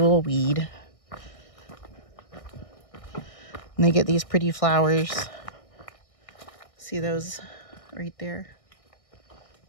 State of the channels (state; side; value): late; right; 1.6 ms